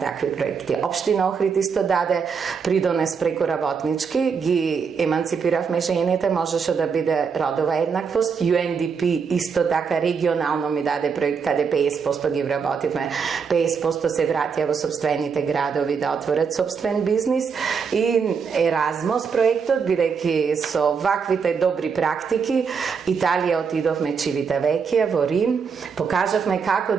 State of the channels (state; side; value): quieter; left; 6.0 dB